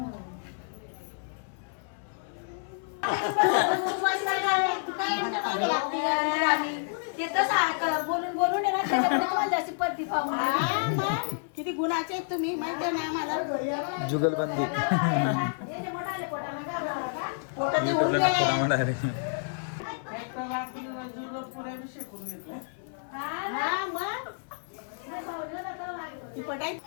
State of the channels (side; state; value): right; silent; 58 dB below the other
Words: किती गुणाचे आहेत तुम्ही, माहिती आहे ना आम्हाला. जुगलबंदी युट्यूबला